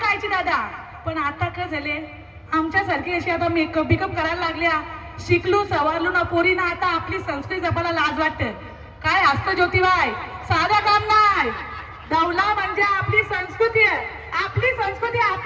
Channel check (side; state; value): both; identical; correlation 1.00